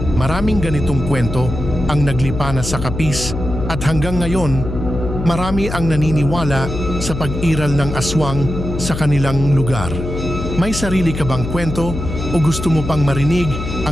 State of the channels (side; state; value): left; noise; hum, 6 dB below the sound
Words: Maraming ganitong kwento ang naglipana sa Capiz at hanggang ngayon, marami ang naniniwala sa pag-iral ng aswang sa kanilang lugar. May sarili ka bang kwento o gusto mo pang marinig